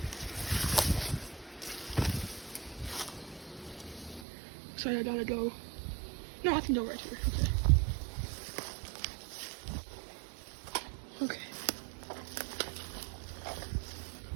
Looks like I gotta go. No, I can go right here. Okay.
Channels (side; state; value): left; drops out; at 4.2 s